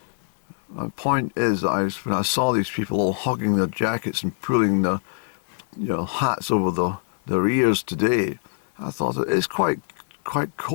My point is that when I saw these people all hugging their jackets and pulling their hats over their ears today, I thought it's quite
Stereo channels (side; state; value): right; silent; digital silence